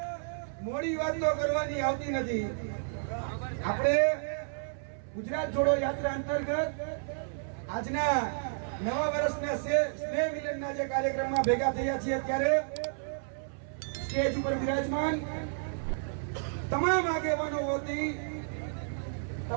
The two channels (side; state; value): left; silent; 57 dB below the other